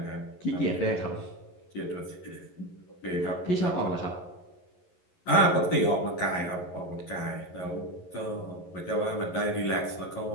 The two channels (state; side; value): late; right; 11 ms